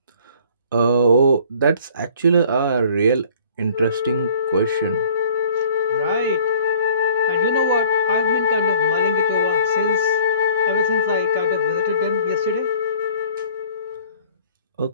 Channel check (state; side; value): inverted; both; correlation -0.54